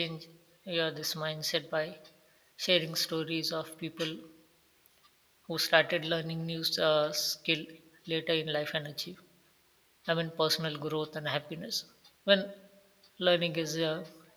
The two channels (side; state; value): both; identical; correlation 1.00